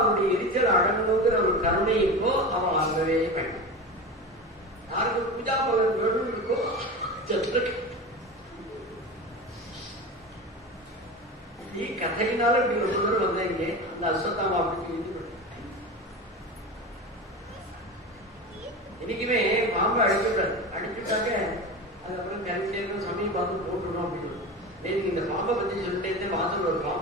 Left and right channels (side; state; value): both; normal; correlation 0.27